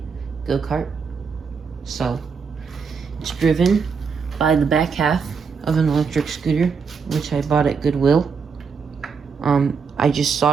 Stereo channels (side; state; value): left; quieter; 5.6 dB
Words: go-kart. So it's driven by the back half of an electric scooter, which I bought at Goodwill. I just